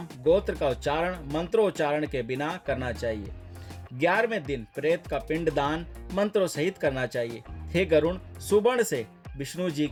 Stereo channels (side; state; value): both; identical; correlation 1.00